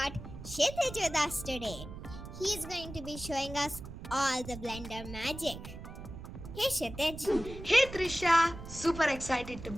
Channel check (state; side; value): noise; right; rumble, 11 dB below the sound